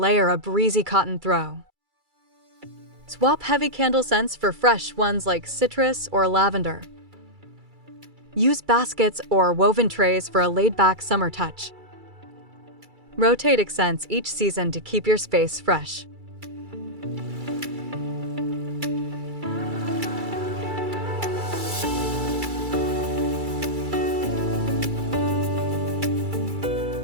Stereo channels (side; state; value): left; late; 2.3 ms